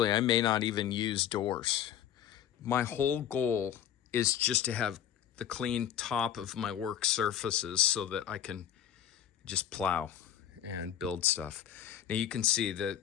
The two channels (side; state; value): right; quieter; 10.2 dB